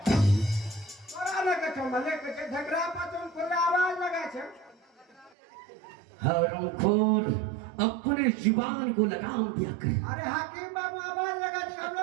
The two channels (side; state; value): left; drops out; at 5.3 s